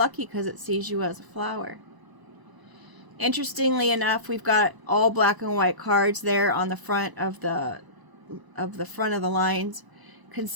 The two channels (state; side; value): late; left; 1.0 ms